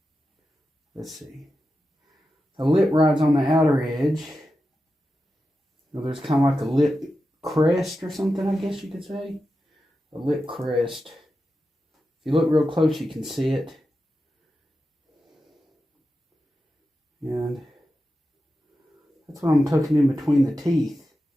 Let's see. The lip rides on the outer edge. So there's kind of like a lip crest or something, I guess you could say. A lip crest. If you look real close, you can see it. And that's what I'm tucking in between the teeth.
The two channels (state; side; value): normal; both; correlation 0.91